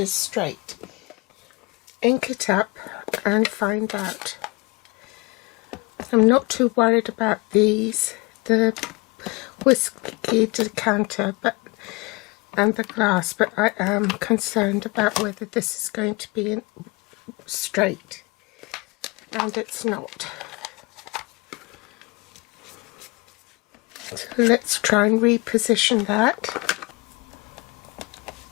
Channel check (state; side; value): quieter; right; 26.8 dB